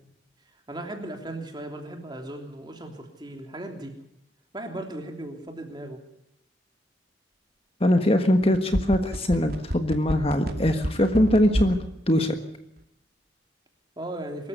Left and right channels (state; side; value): normal; both; correlation 0.79